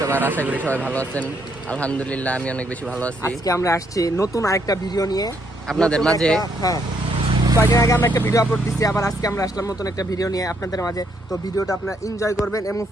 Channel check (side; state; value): both; normal; correlation 0.73